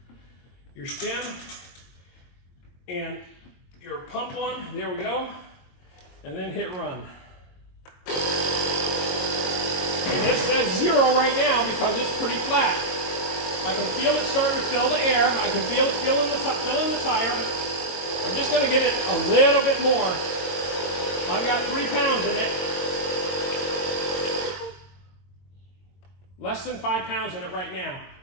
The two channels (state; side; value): late; right; 22 ms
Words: stem and your pump on. There we go. And then hit run. And this says 0 right now because it's pretty flat. I can feel it starting to fill the air. I can feel it filling the tire. I'm just going to give it a little bit more. I've got 3 pounds in it. Less than 5 pounds in it right now.